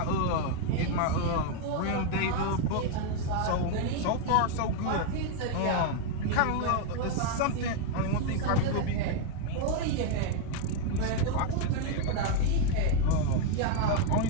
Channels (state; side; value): different; both; correlation 0.01